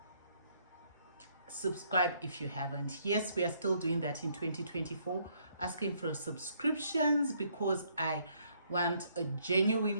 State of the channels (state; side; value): inverted; both; correlation -0.69